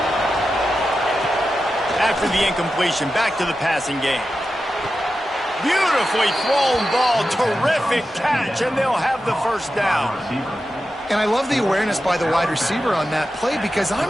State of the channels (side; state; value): both; normal; correlation 0.91